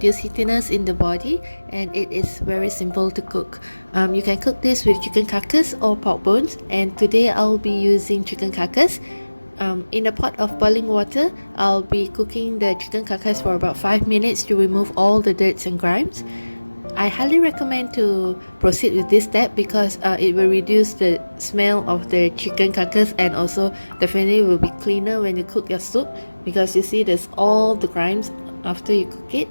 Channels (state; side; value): inverted; both; correlation -1.00